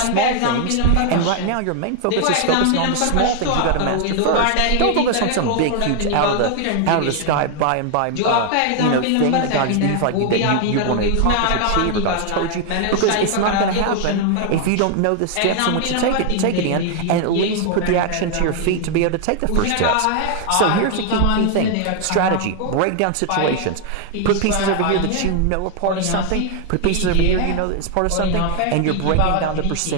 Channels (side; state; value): both; different; correlation 0.00